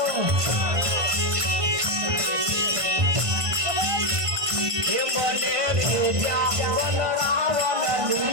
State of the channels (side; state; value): left; late; 1.5 ms